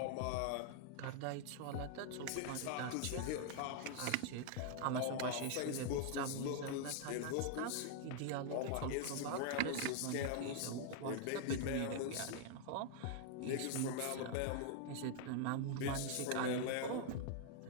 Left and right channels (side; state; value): both; different; correlation 0.00